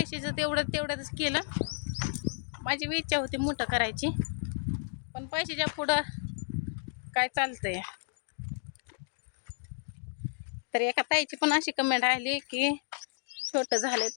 तेवढंच केलं. माझी इच्छा होती मोठं करायची पण पैशाच्या पुढं काय चालतंय. तर एका ताईची पण अशी कमेंट आली की छोटं झालंय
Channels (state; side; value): silent; right; digital silence